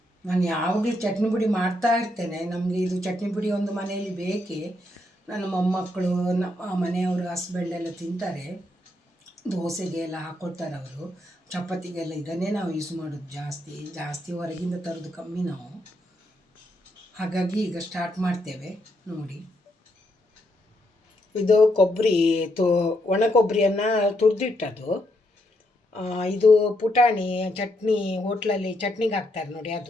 ನಾನು ಯಾವಾಗಲೂ ಚಟ್ನಿ ಪುಡಿ ಮಾಡ್ತಾ ಇರ್ತೇನೆ. ನಮಗೆ ಇದು ಚಟ್ನಿ ಪುಡಿ ಒಂದು ಮನೆಯಲ್ಲಿ ಬೇಕೇ. ನನ್ನ ಮೊಮ್ಮಕ್ಕಳು, ನಮ್ಮ ಮನೆಯವರು, ಹಸ್ಬೆಂಡ್ ಎಲ್ಲ ತಿಂತಾರೆ. ದೋಸೆಗೆ ಎಲ್ಲ ಹಾಕ್ಕೊಳ್ತಾರೆ ಅವರು. ಚಪಾತಿಗೆಲ್ಲ ಇದನ್ನೇ ನಾವು ಯೂಸ್ ಮಾಡೋದು ಜಾಸ್ತಿ ಹೊರಗಿಂದ ತರೋದು ಕಮ್ಮಿ ನಾವು. ಹಾಗಾಗಿ ಈಗ ಸ್ಟಾರ್ಟ್ ಮಾಡ್ತೇವೆ ನೋಡಿ. ಇದು ಕೊಬ್ಬರಿ ಒಣ ಕೊಬ್ಬರಿಯನ್ನು ತುರಿದಿಟ್ಟದು. ಇದು ಪುಟಾಣಿ ಚಟ್ನಿ, ಹೋಟ್ಲಲ್ಲಿ ಚಟ್ನಿಗೆ ಹಾಕ್ತಾರೆ ನೋಡಿ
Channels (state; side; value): normal; both; correlation 0.78